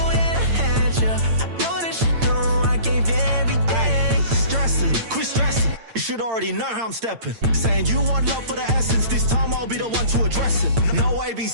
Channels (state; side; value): late; left; 8.8 ms